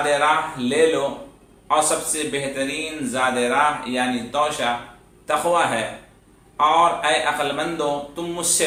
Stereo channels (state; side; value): identical; both; correlation 1.00